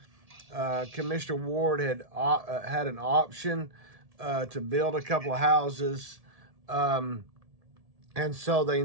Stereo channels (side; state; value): left; late; 1.7 ms